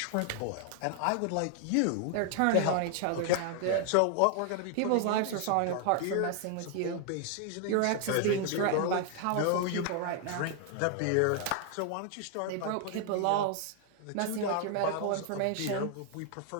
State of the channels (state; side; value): different; both; correlation 0.00